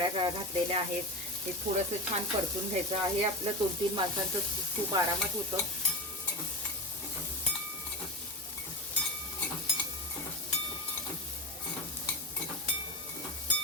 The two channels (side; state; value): both; normal; correlation 0.22